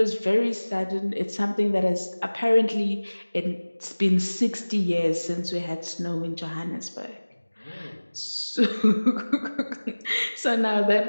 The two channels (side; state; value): both; inverted; correlation -1.00